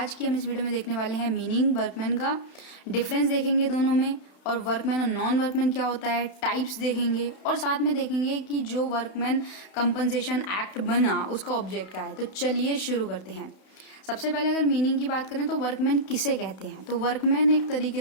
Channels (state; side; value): late; right; 31 ms